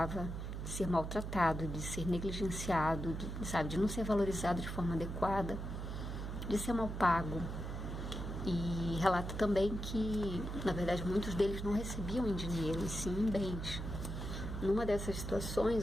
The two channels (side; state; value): right; noise; hum, 5 dB below the sound